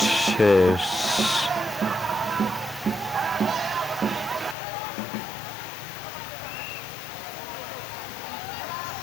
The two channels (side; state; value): right; drops out; at 4.5 s